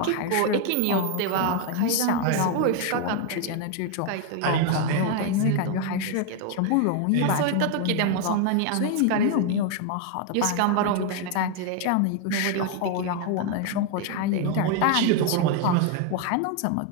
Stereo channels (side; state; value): both; different; correlation 0.01